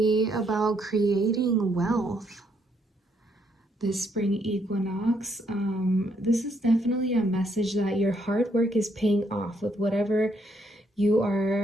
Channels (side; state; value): both; normal; correlation 0.73